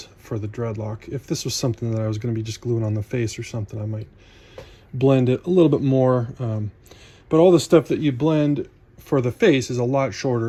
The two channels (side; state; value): both; identical; correlation 1.00